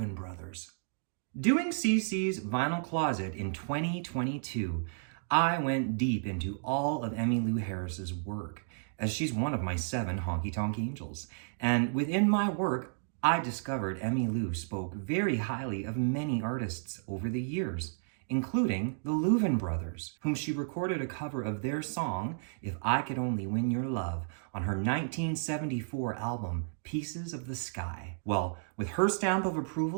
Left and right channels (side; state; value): left; silent; digital silence